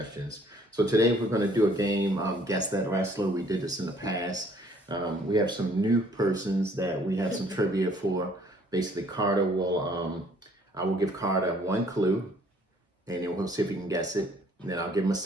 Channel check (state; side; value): normal; both; correlation 0.60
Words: So today we're going to do a game, Guess That Wrestler. We did this in the past. We have some new persons that we have some trivia for. Basically, Karter will, I will give Karter one clue, and then we'll see if he can guess it. And then I'll give him a